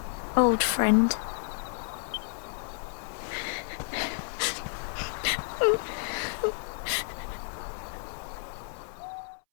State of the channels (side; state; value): right; silent; 57 dB below the other